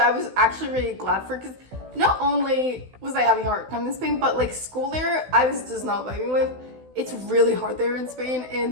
was actually really glad for because not only was I having a hard time in Spain, but like school there, I was just not vibing with. It's really hard there in Spain,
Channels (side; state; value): left; late; 16 ms